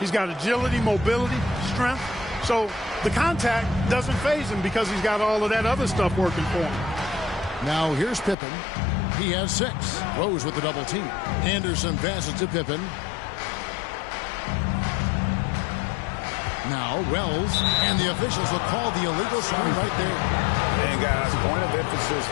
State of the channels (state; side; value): drops out; right; at 8.3 s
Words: got agility, mobility, strength. So the contact doesn't faze him because he's got all of that other stuff working for him. Now here's Pippen. He has 6. Rose with the double team. Anderson passes to Pippen. Now Wells, and the officials will call the illegal screen right there. And guys, point of emphasis